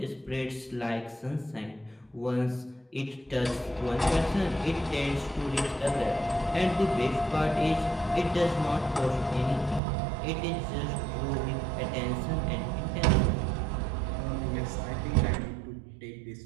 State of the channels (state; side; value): drops out; left; at 9.8 s